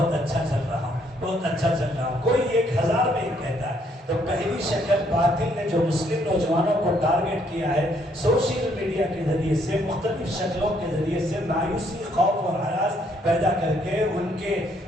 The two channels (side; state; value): both; normal; correlation 0.69